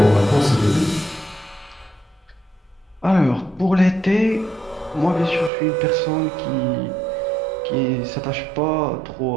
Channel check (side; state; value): left; drops out; at 5.5 s